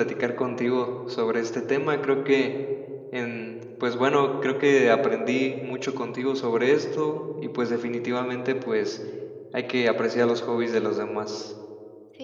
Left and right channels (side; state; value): both; identical; correlation 1.00